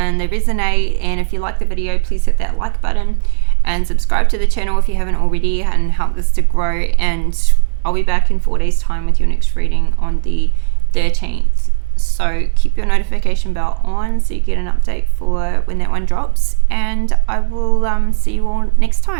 they resonate. And if you like the video, please hit that like button and subscribe to the channel if you haven't already, and help this to grow. And I'll be back in 4 days time with your next reading on the 13th. So keep your notification bell on so you get an update for when that one drops, and I will see you all next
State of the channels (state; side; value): silent; left; 63 dB below the other